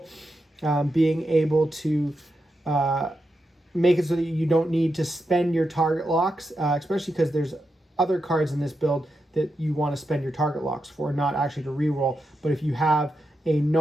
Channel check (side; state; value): both; normal; correlation 0.86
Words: Being able to make it so that you don't need to spend your target locks, especially because there's other cards in this build that you want to spend your target locks for, not actually to reroll. But if you have a